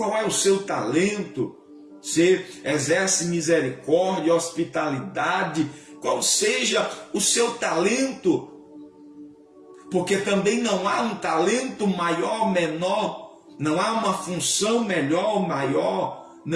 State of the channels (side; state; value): both; identical; correlation 1.00